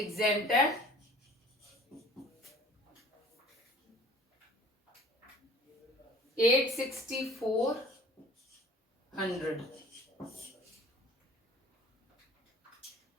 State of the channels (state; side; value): normal; both; correlation 0.49